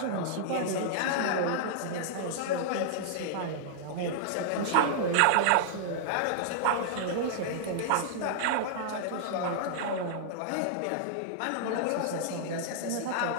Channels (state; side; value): different; both; correlation -0.01